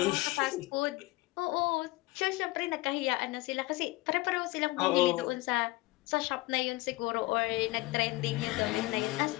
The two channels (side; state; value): right; quieter; 20.9 dB